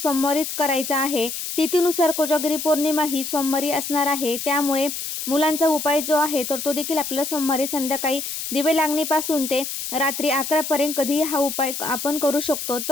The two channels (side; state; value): left; noise; hiss, 5 dB below the sound